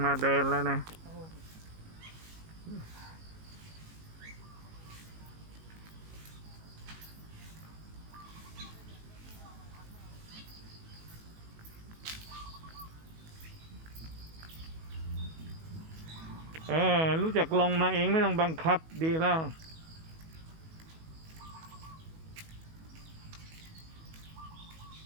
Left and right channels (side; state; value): left; late; 19 ms